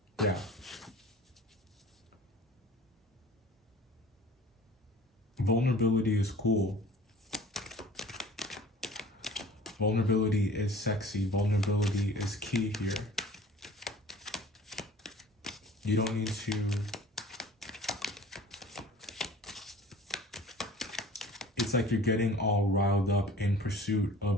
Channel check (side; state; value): both; normal; correlation 0.46